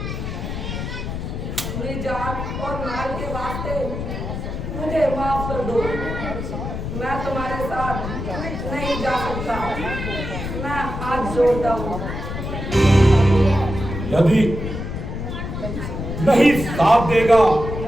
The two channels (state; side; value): noise; left; rumble, 6 dB below the sound